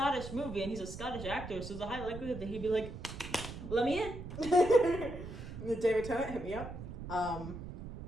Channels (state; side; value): noise; right; rumble, 10 dB below the sound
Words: movie, and he's a Scottish actor, so there's a high likelihood that he'd be like, "Let me in." David Tennant, hit me up.